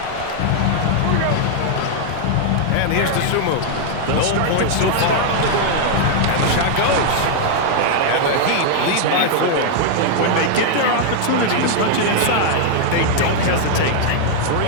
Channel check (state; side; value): different; both; correlation 0.00